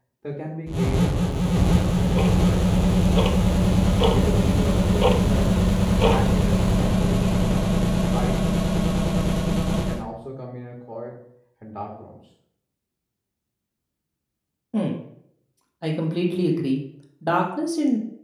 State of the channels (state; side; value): identical; both; correlation 1.00